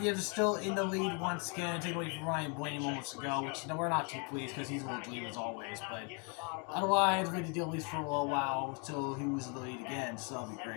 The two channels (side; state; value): right; quieter; 35.1 dB